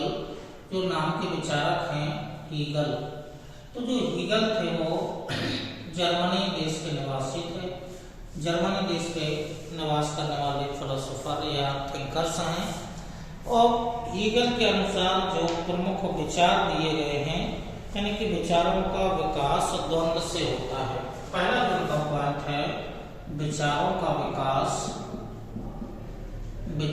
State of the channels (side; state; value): both; identical; correlation 1.00